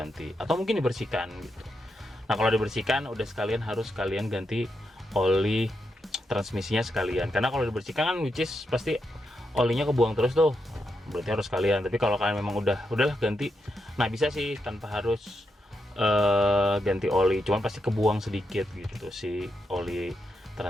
atau mungkin dibersihkan gitu. Nah kalau dibersihkan udah sekalian harus kalian ganti oli transmisinya sekalian, karena kalau dibersihkan kan which is pasti olinya kebuang terus tuh, berarti harus kalian. Tapi kalau kalian memang udahlah ganti, nah bisa sih tanpa harus ganti oli, cuman pasti kebuang sedikit gitu si oli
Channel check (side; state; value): both; normal; correlation 0.84